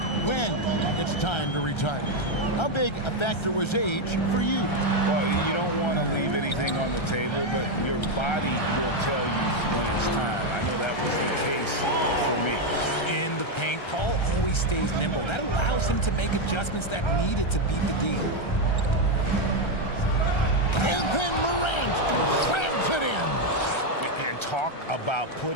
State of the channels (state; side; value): late; right; 1.3 ms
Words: when it's time to retire. How big a factor was age for you? Well, you don't want to leave anything on the table, but your body will tell you when it's time. I know that was the case for me. In the paint, Paul always stays nimble. That allows him to make adjustments that needed to beat the D. And then Morant slams it in. And talk about